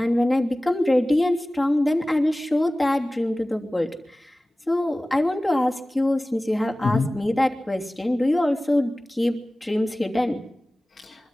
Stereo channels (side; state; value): both; normal; correlation 0.97